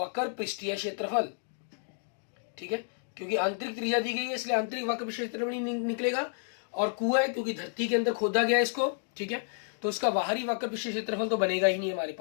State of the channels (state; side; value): silent; right; digital silence